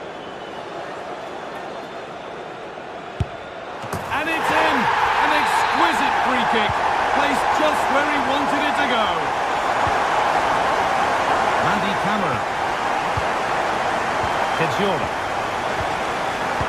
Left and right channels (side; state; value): both; identical; correlation 1.00